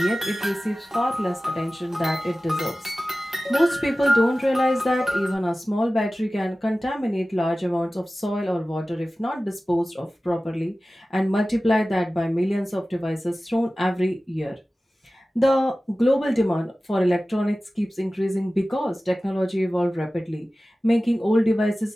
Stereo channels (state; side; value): normal; both; correlation 0.96